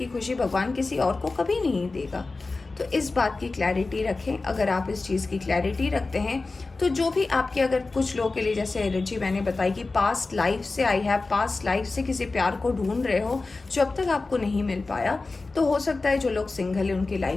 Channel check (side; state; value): right; quieter; 3.6 dB